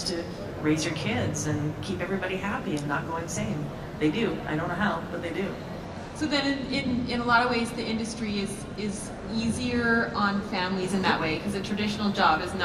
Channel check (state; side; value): identical; both; correlation 1.00